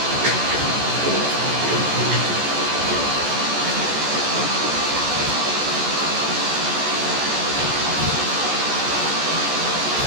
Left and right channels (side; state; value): left; late; 14 ms